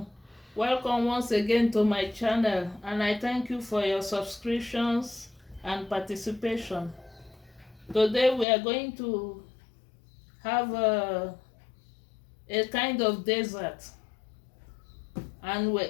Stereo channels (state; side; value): drops out; right; at 8.5 s